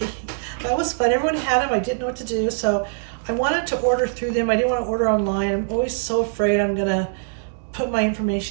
that was fun. Everyone had them. I didn't know what to do, so I wanted to order through them. I didn't want to order online. I'm always so afraid I'm gonna put my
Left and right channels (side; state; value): left; silent; digital silence